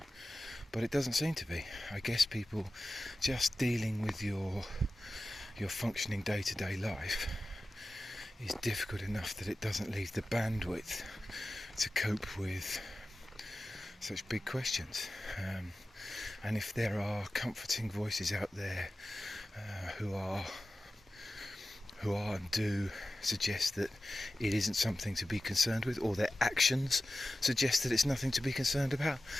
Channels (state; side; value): normal; both; correlation 0.94